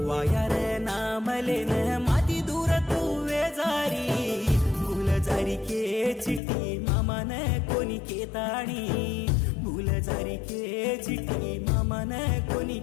वाया रे नामले न माती दूर तू वेजारी भूलजारी के चिट्टी मामा न कोणी केताणी भूलजारी के चिट्टी मामा न कोणी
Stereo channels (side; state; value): right; drops out; at 6.4 s